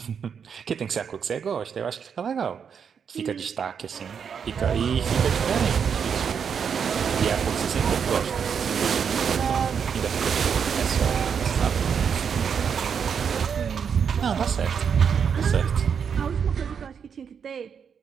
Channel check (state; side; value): quieter; left; 7.0 dB